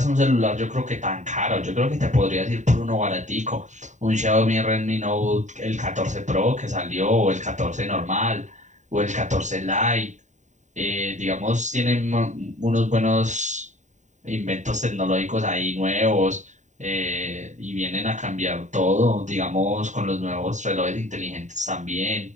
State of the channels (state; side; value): late; left; 0.35 ms